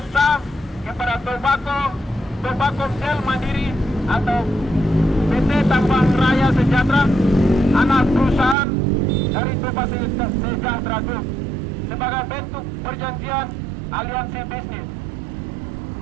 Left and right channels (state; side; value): drops out; left; at 8.6 s